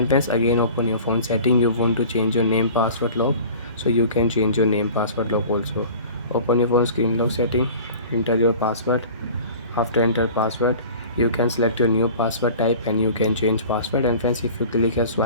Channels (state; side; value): inverted; both; correlation -0.43